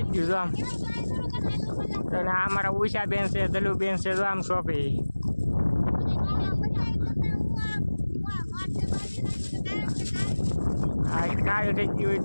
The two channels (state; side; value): inverted; both; correlation -1.00